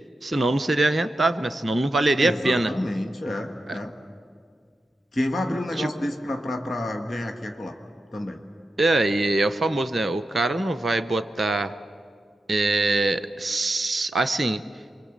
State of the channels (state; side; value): normal; both; correlation 0.90